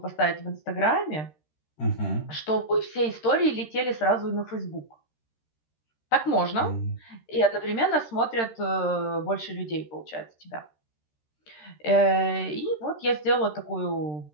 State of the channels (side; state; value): right; late; 13 ms